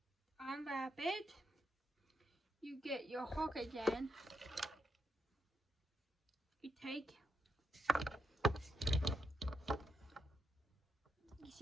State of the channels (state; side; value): normal; both; correlation 0.81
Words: unwrap it. You get your hook again. You take, you